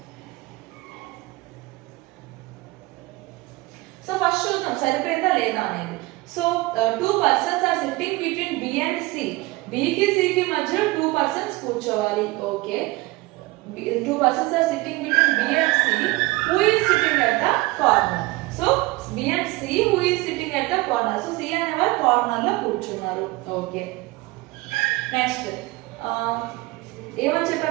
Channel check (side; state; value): left; quieter; 21.2 dB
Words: సో ఫస్ట్ చూద్దాం సరిపోయిందా లేదా అనేది. So 2 persons are sitting between B and C. B కి C కి మధ్యలో 2 persons కూర్చోవాలి. Okay. 2 persons are sitting between B and C. Who is sitting at the corner? So B and C, who is sitting at the corner? So C అనేవారు corner లో కూర్చున్నారు. Okay. Next ఏమని